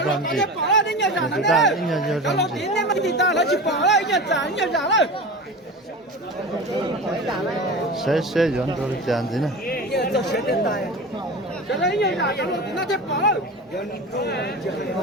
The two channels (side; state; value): both; normal; correlation 0.30